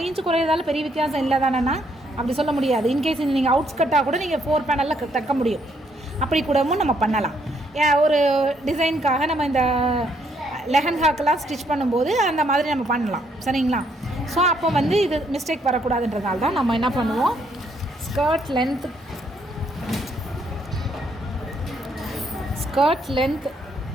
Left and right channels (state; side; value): normal; both; correlation 0.71